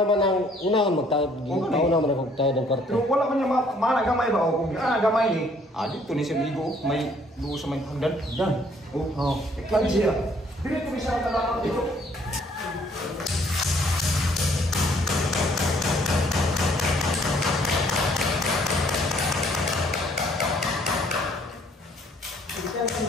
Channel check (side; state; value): both; normal; correlation 0.63